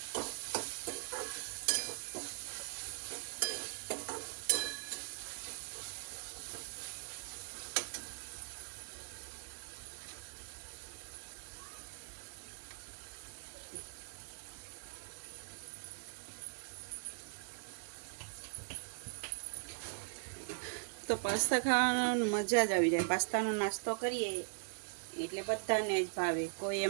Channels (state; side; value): silent; left; digital silence